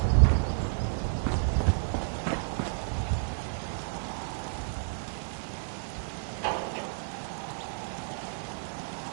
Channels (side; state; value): left; silent; 57 dB below the other